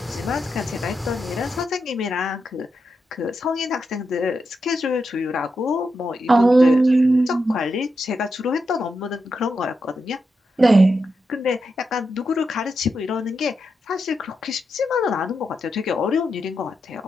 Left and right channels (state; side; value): normal; both; correlation 0.86